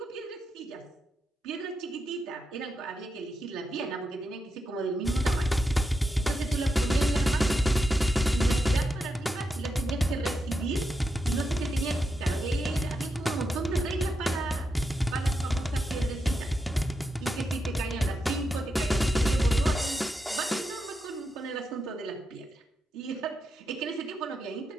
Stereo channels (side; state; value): both; normal; correlation 0.86